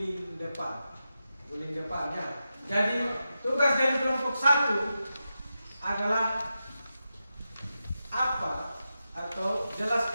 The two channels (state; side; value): inverted; both; correlation -0.90